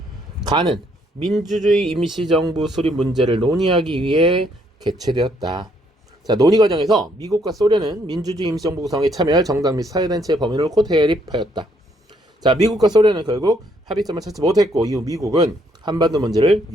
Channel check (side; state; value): both; normal; correlation 0.70